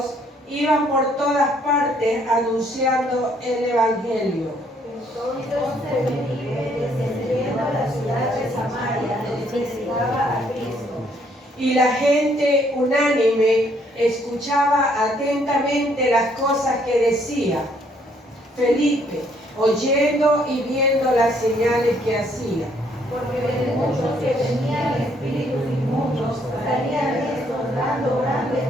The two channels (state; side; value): normal; both; correlation 0.67